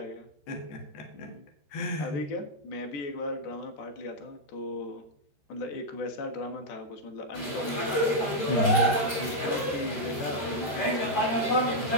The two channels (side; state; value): right; late; 13 ms